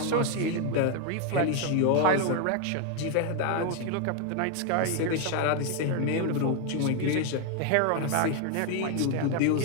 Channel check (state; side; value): different; both; correlation 0.01